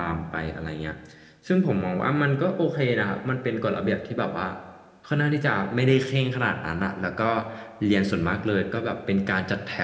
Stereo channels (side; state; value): both; identical; correlation 1.00